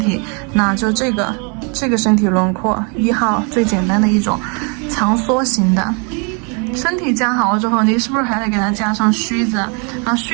那就这个身体轮廓1号最简单的一种长梭型的。身体加好了之后，你是不是还得给它加上须子啊？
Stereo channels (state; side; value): quieter; left; 35.3 dB